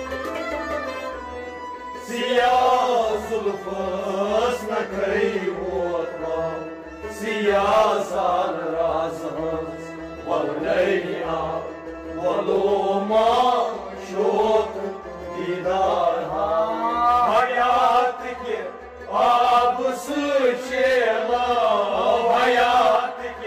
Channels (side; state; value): both; identical; correlation 1.00